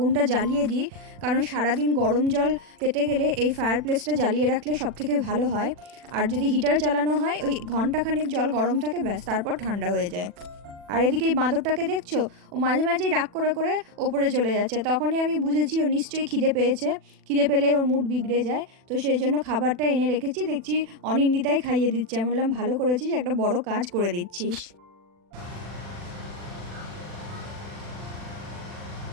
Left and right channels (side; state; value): left; late; 40 ms